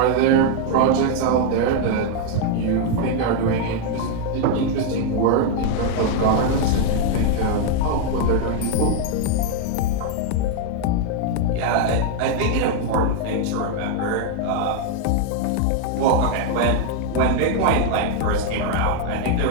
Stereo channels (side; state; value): both; different; correlation 0.00